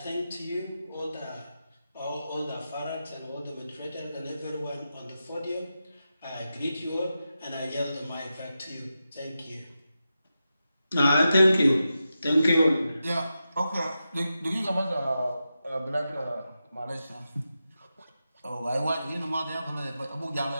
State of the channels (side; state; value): both; inverted; correlation -0.90